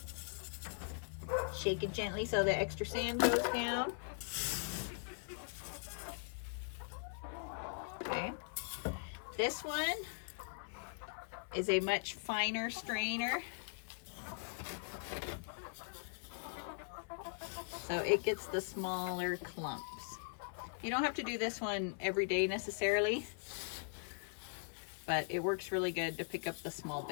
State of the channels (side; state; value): right; silent; 51 dB below the other